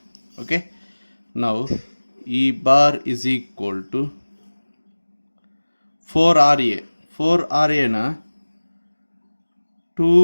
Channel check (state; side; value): inverted; both; correlation -1.00